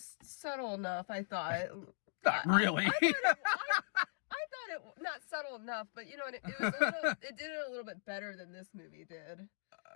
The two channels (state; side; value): silent; right; digital silence